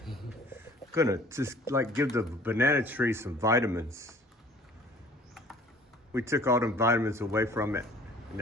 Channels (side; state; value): both; normal; correlation 0.51